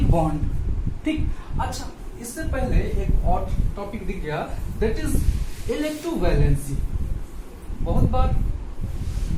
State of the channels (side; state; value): both; identical; correlation 1.00